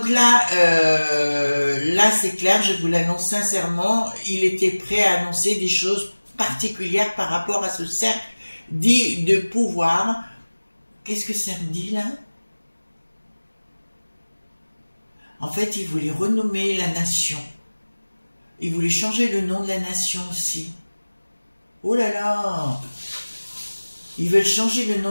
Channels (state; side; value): inverted; both; correlation -1.00